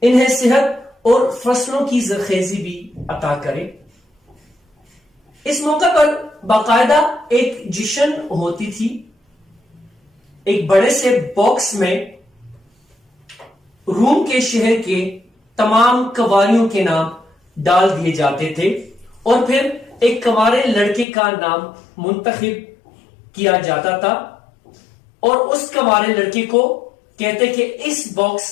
انہیں صحت اور فصلوں کی زرخیزی بھی عطا کرے۔ اس موقع پر باقاعدہ ایک جشن ہوتی تھی۔ ایک بڑے سے باکس میں روم کے شہر کے تمام کنواریوں کے نام ڈال دیے جاتے تھے اور پھر ایک کنوارے لڑکے کا نام منتخب کیا جاتا تھا اور اس کنوارے لڑکے کو کہتے کہ اس باکس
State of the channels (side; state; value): right; drops out; at 21.1 s